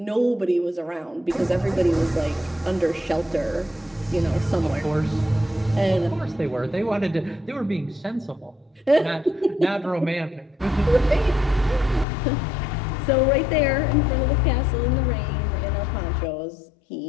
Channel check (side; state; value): right; drops out; at 12.1 s